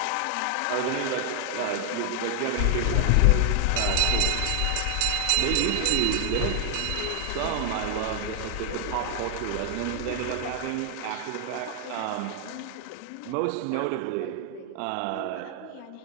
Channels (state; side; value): different; both; correlation 0.00